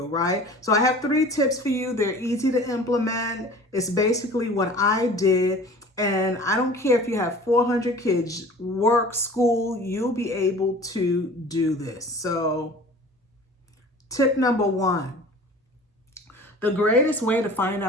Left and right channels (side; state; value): both; normal; correlation 0.43